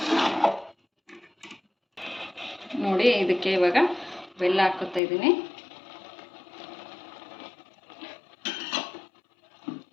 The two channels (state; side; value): drops out; right; at 5.0 s